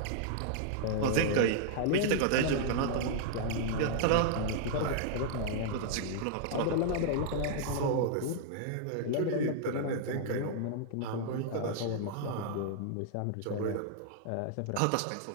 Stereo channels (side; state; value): both; different; correlation -0.01